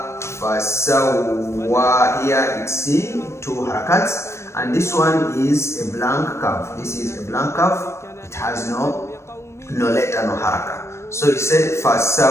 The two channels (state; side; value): late; right; 0.13 ms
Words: fasawwa. Here it's 2 harakats, and this one is a blank curve. This is a blank curve. It has no letter, no haraka. So it said